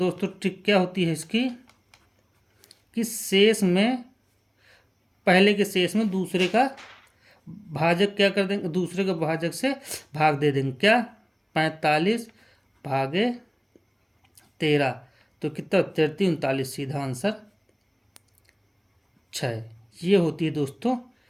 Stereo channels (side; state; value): both; identical; correlation 1.00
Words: ट्रिक क्या होती है इसकी कि शेष में पहले के शेष में दूसरे का भाजक क्या कर देंगे, दूसरे के भाजक से भाग दे देंगे। क्या, 45 भागे 13, तो कितना 33 39, सीधा आंसर 6। ये होती है दोस्तों